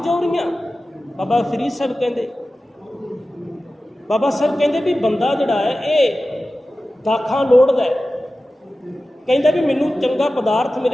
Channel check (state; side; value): normal; both; correlation 0.95